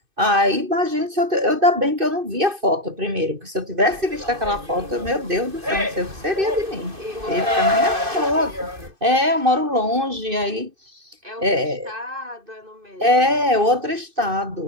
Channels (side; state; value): left; late; 2.6 ms